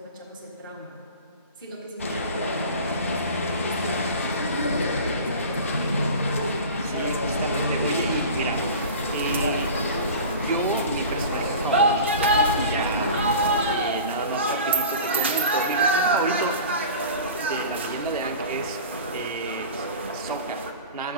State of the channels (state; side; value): inverted; both; correlation -0.37